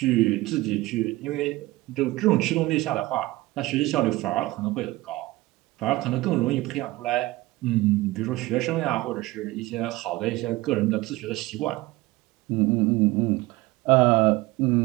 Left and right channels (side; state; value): left; quieter; 19.5 dB